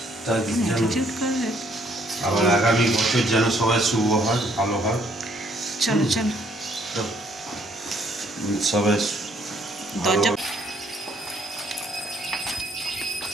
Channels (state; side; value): normal; both; correlation 0.66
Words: তার যেন অ্যাটিটিউড করে। আবার আগামী বছর যেন সবাই শুভ হয়, ভালো হয়। চলো চলো, তো সবাই ভালো দরজা